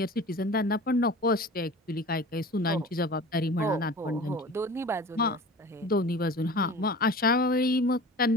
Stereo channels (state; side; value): normal; both; correlation 0.39